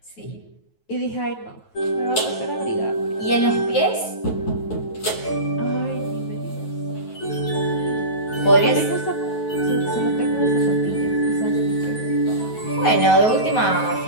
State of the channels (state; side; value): late; right; 9.3 ms